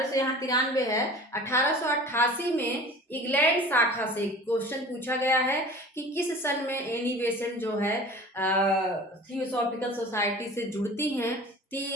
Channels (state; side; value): normal; both; correlation 0.41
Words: यहाँ 93 है, 1888 में इंग्लैंड शाखा से क्वेश्चन पूछा गया है कि किस सन में एनी बेसेंट जो है थियोसॉफिकल सोसाइटी से जुड़ती हैं। तो